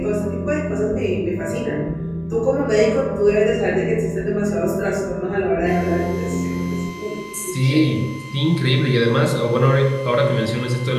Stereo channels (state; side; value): identical; both; correlation 1.00